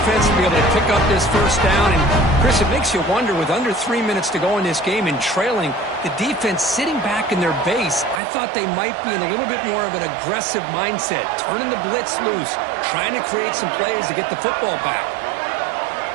to be able to pick up this first down. And, Chris, it makes you wonder, with under 3 minutes to go in this game and trailing, the defense sitting back in their base, I thought they might be in a little bit more of an aggressive mindset, turning the blitz loose, trying to create some plays to get the football back.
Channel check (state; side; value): drops out; left; at 8.2 s